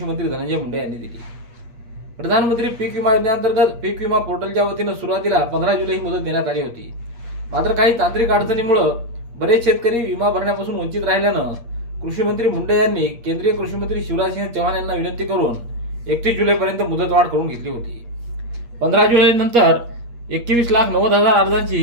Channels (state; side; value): late; left; 8.5 ms